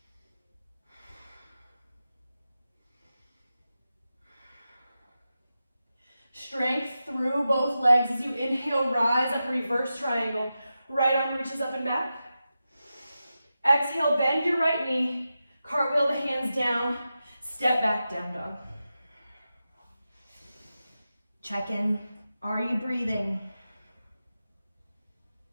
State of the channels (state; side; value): inverted; both; correlation -0.91